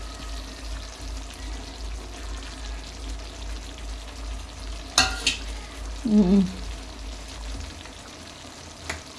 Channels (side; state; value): both; identical; correlation 1.00